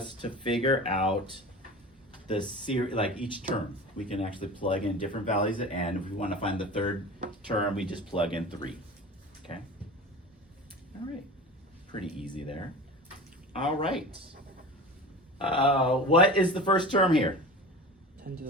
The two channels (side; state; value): both; normal; correlation 0.34